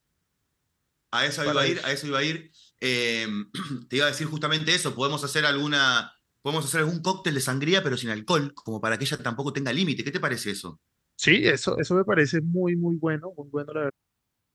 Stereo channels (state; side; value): identical; both; correlation 1.00